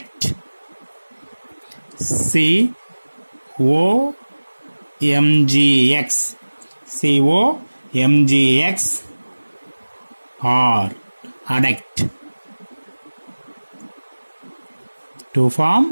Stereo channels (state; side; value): inverted; both; correlation -1.00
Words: COMgX. COMgX or adduct. To form